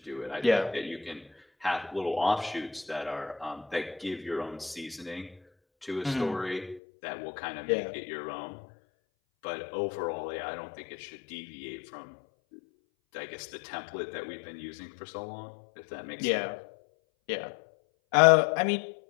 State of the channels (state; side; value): drops out; right; at 6.8 s